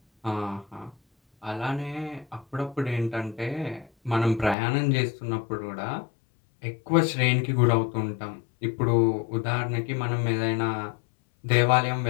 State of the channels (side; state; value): right; drops out; at 4.5 s